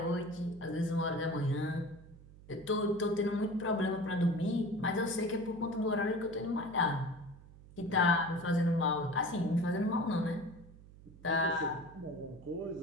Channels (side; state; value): right; noise; hum, 20 dB below the sound